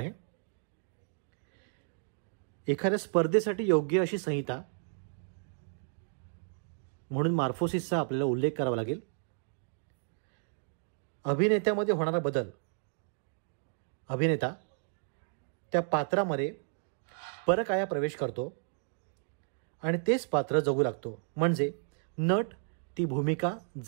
एखाद्या स्पर्धेसाठी योग्य अशी संहिता म्हणून मॉर्फोसिसचा आपल्याला उल्लेख करावा लागेल. अभिनेत्यामध्ये होणारा बदल. अभिनेता त्या पात्रामध्ये परकाया प्रवेश करतो आणि तेच पात्र जगू लागतो, म्हणजे नट ती भूमिका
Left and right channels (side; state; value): left; silent; digital silence